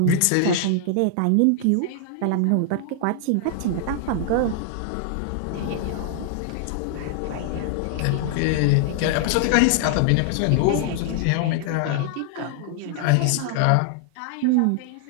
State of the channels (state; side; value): different; both; correlation 0.00